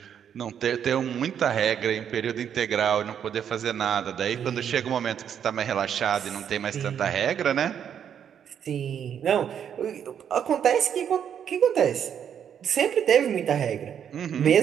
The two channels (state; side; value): quieter; left; 8.6 dB